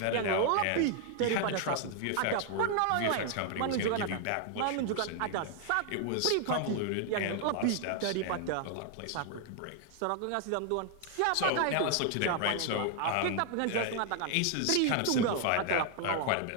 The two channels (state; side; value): different; both; correlation 0.00